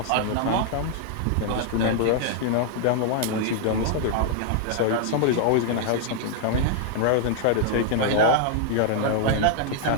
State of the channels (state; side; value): different; both; correlation -0.01